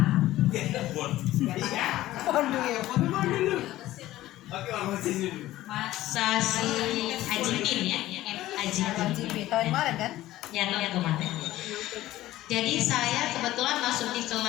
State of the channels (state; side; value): quieter; right; 15.5 dB